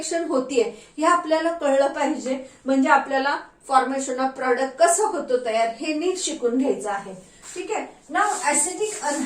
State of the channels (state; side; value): identical; both; correlation 1.00